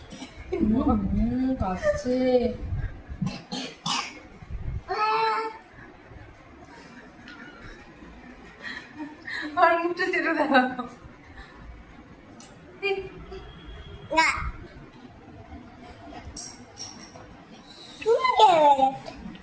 কাছে আর মুখটা চেটে দেওয়া।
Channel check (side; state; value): both; identical; correlation 1.00